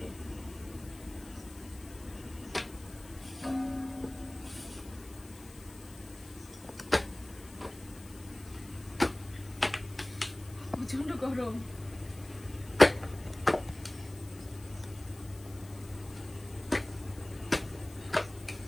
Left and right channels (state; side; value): noise; left; hiss, 20 dB below the sound